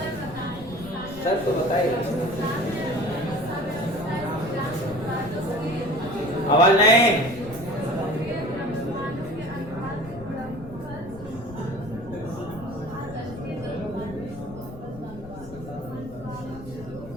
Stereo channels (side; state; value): left; noise; rumble, 15 dB below the sound